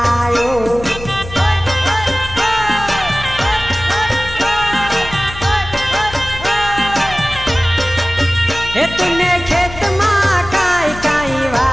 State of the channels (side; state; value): left; noise; hum, 13 dB below the sound